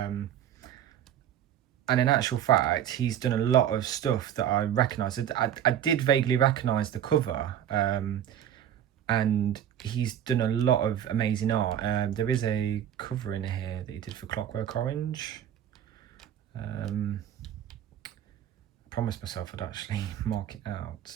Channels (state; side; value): quieter; left; 10.3 dB